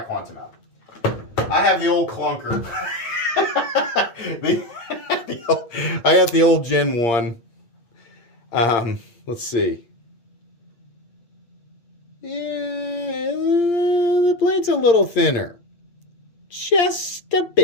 Quantum out. I have the old clunker. I got the old Gen 1. Let's see. Yeah, the blade's a little thinner. Just a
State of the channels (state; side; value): late; right; 8.6 ms